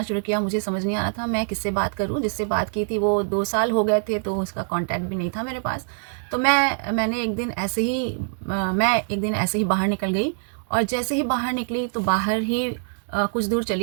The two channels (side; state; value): left; silent; 63 dB below the other